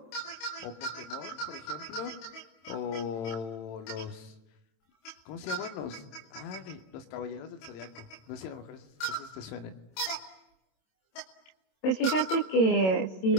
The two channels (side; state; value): right; late; 27 ms